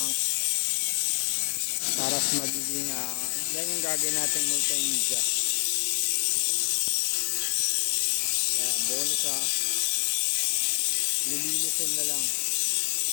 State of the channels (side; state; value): right; silent; digital silence